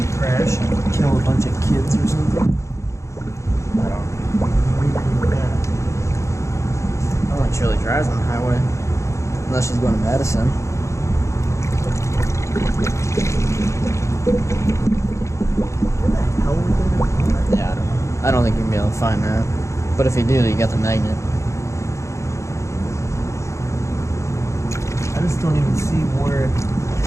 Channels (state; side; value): late; right; 0.14 ms